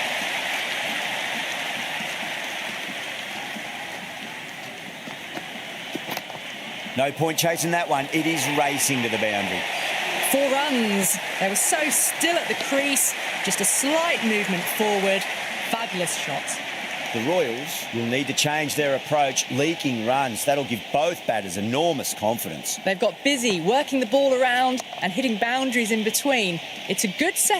No point chasing that one. It is racing to the boundary. 4 runs. They were so still at the crease. Just a slight movement forward. Fabulous shot. The Royals will need to change their approach, leaking runs. That'll give both batters enormous confidence. They've got busy working the ball around and hitting boundaries in between. It's a good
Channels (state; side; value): identical; both; correlation 1.00